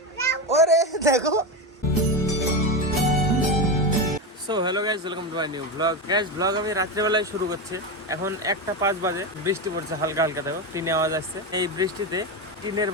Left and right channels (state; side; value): normal; both; correlation 0.15